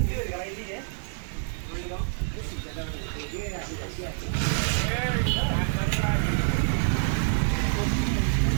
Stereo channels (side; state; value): left; silent; 58 dB below the other